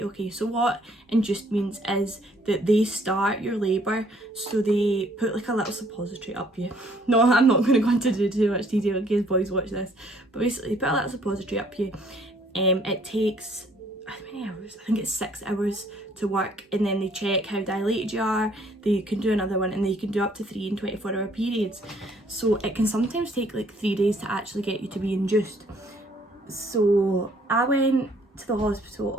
okay. So what induced means is that they start your labour, so they put like a little suppository up you. No, I'm not going to go into too much detail in case boys watch this. But basically, they put a little suppository up you. It takes, how many hours? I think it's 6 hours to work, and then they check how dilated you are. They can do another one, and they can do up to 3 and 24-hour periods. So it can sometimes take like 3 days to actually get you to be induced. So I went to the hospital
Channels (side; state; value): both; normal; correlation 0.62